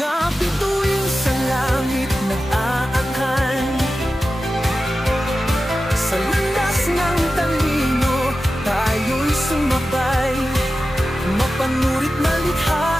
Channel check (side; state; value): both; normal; correlation 0.93